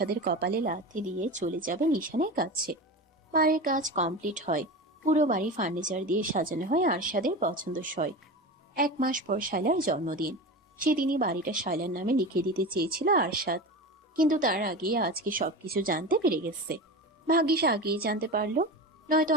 কপালে লাথি দিয়ে চলে যাবে নিশানের কাছে। বাড়ির কাজ কমপ্লিট হয়। পুরো বাড়ি ফার্নিচার দিয়ে সাজানো হয় আরশাদের পছন্দসই। 1 মাস পর শায়লার জন্মদিন। সেদিনই বাড়িটা শায়লার নামে লিখে দিতে চেয়েছিল আরশাদ, কিন্তু তার আগে আজকে সবকিছু জানতে পেরে গেছে। ভাগ্যিস আগেই জানতে পারলো, নয়তো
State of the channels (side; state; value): both; normal; correlation 0.27